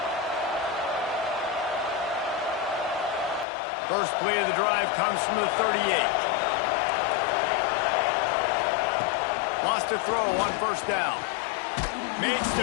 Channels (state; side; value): drops out; right; at 3.5 s